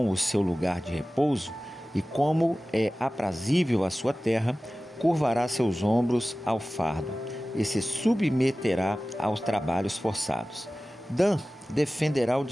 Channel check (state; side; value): normal; both; correlation 0.96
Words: o seu lugar de repouso e como é aprazível a sua terra, curvará seus ombros ao fardo e se submeterá aos trabalhos forçados. Dan defenderá o